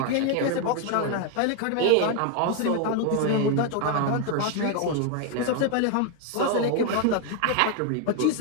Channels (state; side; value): different; both; correlation 0.01